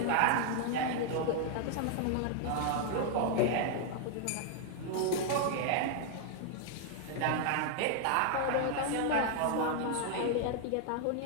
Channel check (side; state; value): both; different; correlation 0.00